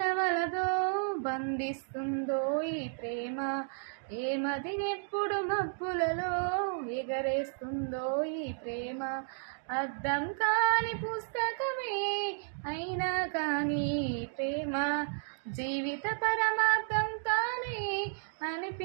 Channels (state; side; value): silent; left; digital silence